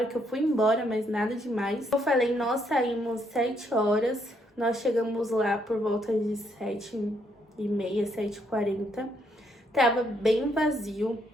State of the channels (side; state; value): both; normal; correlation 0.73